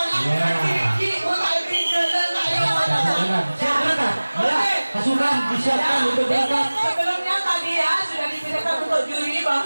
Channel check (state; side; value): inverted; both; correlation -1.00